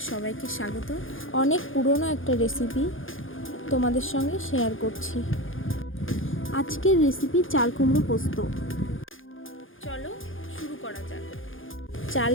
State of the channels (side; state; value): right; late; 0.58 ms